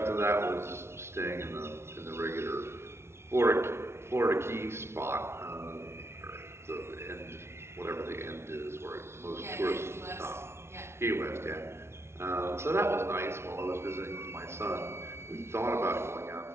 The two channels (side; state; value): left; late; 0.12 ms